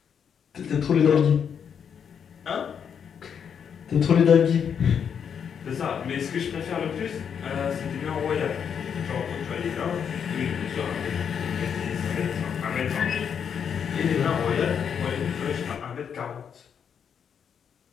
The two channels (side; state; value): right; quieter; 7.5 dB